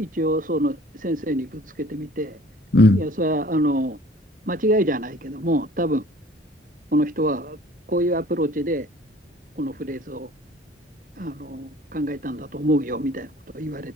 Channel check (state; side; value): normal; both; correlation 0.50